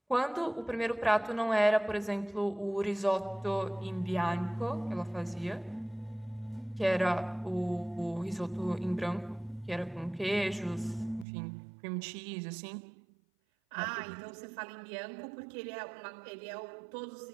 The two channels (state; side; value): drops out; left; at 11.2 s